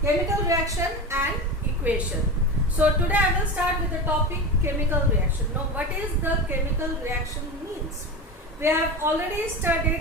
Chemical Reaction and Equation. So today I will start with the topic chemical reaction. Now what is the chemical reaction means? We have already studied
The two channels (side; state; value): both; normal; correlation 0.25